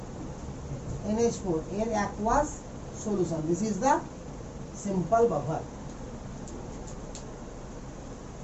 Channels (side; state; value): both; identical; correlation 1.00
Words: NH4 এর aqueous solution. This is the simple buffer.